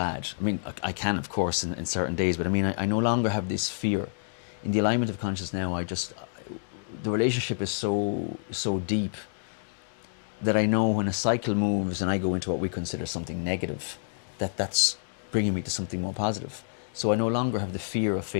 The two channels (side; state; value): right; silent; digital silence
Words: I mean, I can, of course, in certain days, but I mean, I no longer have this fear. In the alignment of consciousness now, the relationship is so deep that I know when a cycle moves and I go into what we consider something negative, that's bringing me to something more positive. So I no longer have the fear of